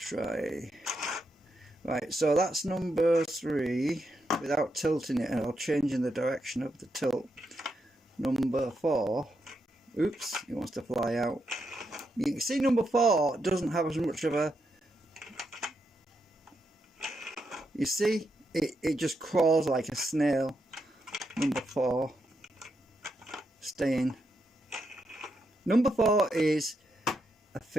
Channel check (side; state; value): both; normal; correlation 0.82